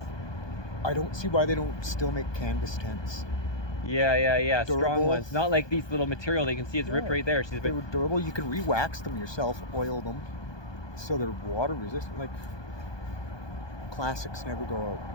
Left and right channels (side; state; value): right; late; 1.2 ms